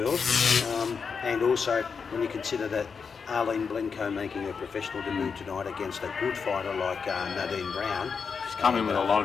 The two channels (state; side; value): quieter; right; 5.7 dB